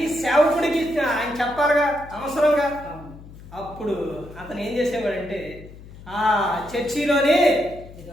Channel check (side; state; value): left; noise; hum, 18 dB below the sound